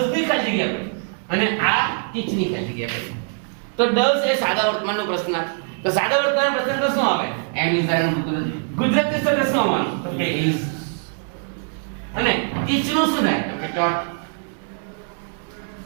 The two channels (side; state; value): left; silent; 55 dB below the other